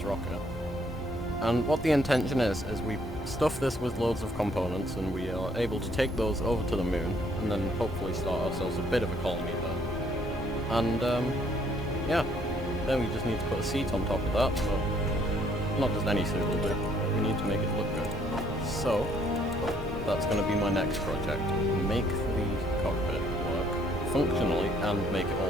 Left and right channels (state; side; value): normal; both; correlation 0.65